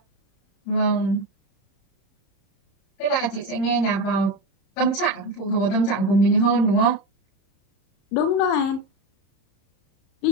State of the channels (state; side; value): late; right; 35 ms